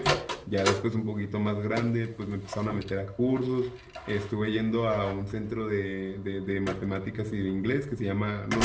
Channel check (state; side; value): identical; both; correlation 1.00